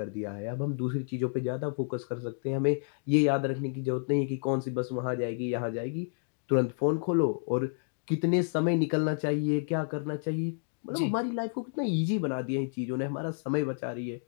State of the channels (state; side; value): silent; right; digital silence